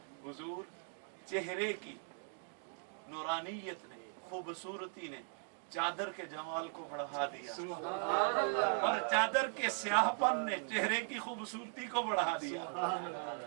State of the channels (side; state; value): left; silent; 52 dB below the other